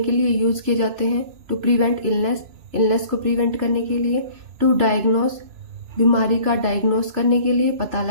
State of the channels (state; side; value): late; left; 2.9 ms